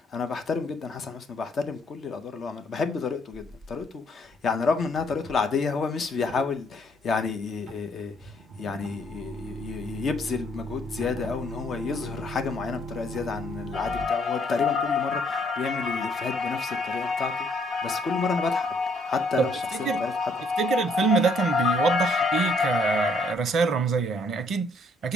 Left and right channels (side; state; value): both; normal; correlation 0.67